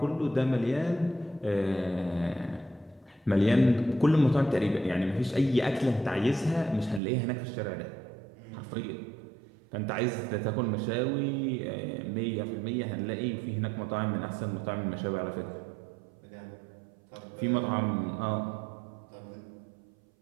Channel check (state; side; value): drops out; left; at 7.0 s